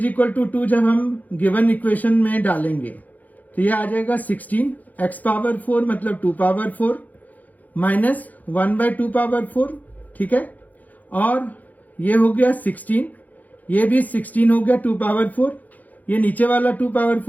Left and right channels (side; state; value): right; late; 0.080 ms